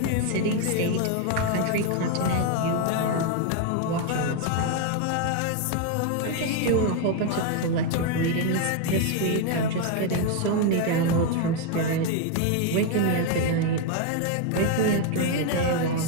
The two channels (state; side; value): different; both; correlation 0.01